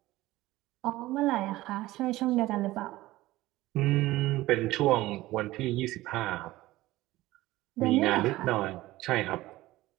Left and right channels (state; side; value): quieter; left; 17.5 dB